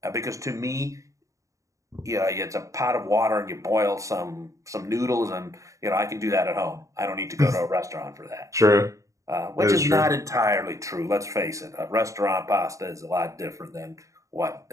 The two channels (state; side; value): late; left; 0.15 ms